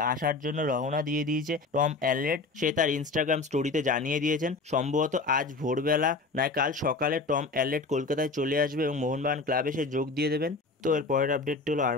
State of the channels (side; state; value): right; quieter; 3.8 dB